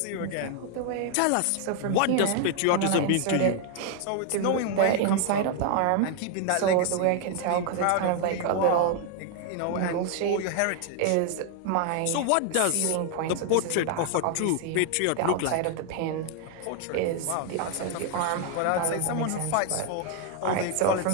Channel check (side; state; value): both; different; correlation 0.00